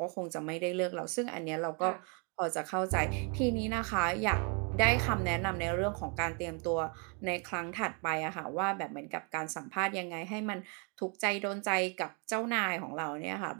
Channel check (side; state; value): left; quieter; 36.0 dB